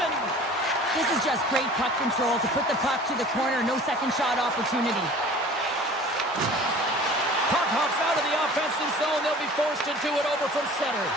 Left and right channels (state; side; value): normal; both; correlation 0.44